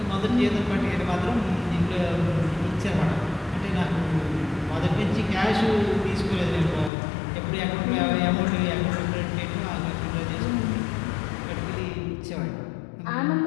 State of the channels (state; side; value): drops out; right; at 6.9 s